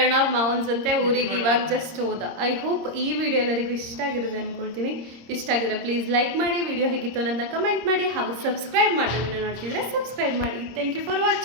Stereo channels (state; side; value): late; left; 26 ms